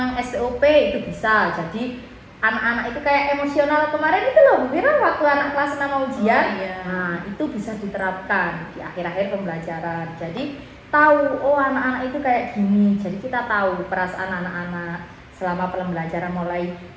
STOP itu bisa. Jadi anak-anak itu kayak emosional kemarin itu loh Bu Viro waktu anak kelas 6 mau ujian. Oh, iya. Nah, itu bisa diterapkan di akhir-akhir pembelajaran. Jadi tahu oh anak-anak itu kayak gini. Jadi kita tahu perasaan anak-anak selama pembelajaran mulai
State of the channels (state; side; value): identical; both; correlation 1.00